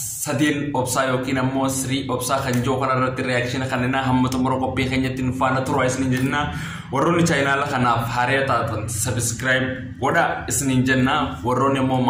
Sadeen Obsaa yookiin ammoo Sirii Obsaa kan jiru kanarratti reakshiina kanneen hamma xumura qophii keenyatti nu faana turaa isiniin jenna. Warroonni chaayinaala kanaaf haaraa taatan subscribe godha isiniin jenna. Warroonni ammoo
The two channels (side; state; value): both; identical; correlation 1.00